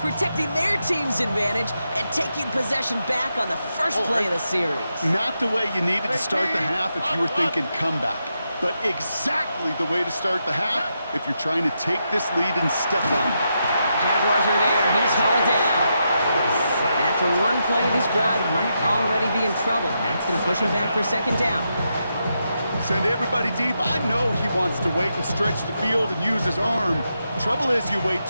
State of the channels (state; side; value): inverted; both; correlation -0.84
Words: their team's advantage and taking possession back on the first play of the series. Not the way you needed to start the half if you were thinking comeback, but exactly the way to start the half if you're trying to take this lead and step on it. Jaguars are there. He's hauled down. After one play, this drive might already be in trouble. That's going to push him back for second down. Send everybody deep. I know he wants to wait and stretch the field and use his arm. Trouble is, you wait